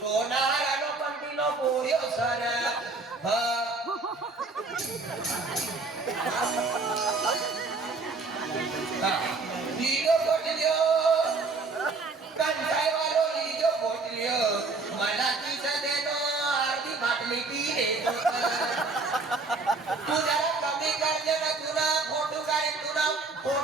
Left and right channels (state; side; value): quieter; left; 3.9 dB